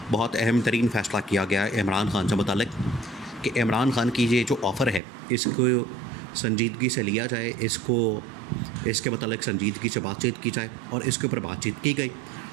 बहुत अहम तरीन फ़ैसला किया गया इमरान खान से मुतल्लिक कि इमरान खान की ये जो ऑफ़र है इसको संजीदगी से लिया जाए, इसके मतलब संजीदगी से बातचीत की जाए और इसके ऊपर बातचीत की गई,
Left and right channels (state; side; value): drops out; left; at 5.0 s